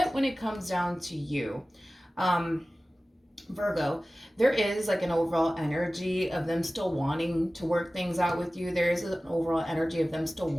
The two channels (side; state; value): both; normal; correlation 0.96